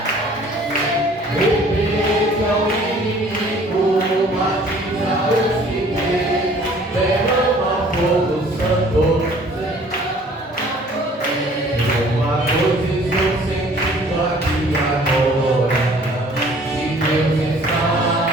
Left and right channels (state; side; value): normal; both; correlation 0.54